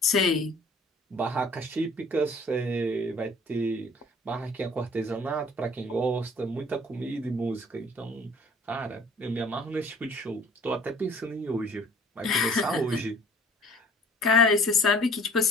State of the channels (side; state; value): both; normal; correlation 0.52